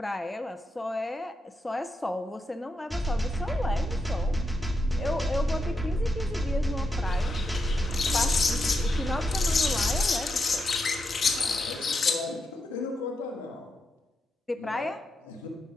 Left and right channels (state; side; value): normal; both; correlation 0.84